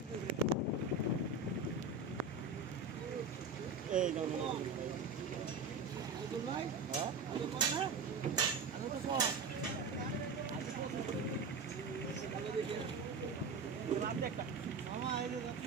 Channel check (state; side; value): quieter; left; 4.2 dB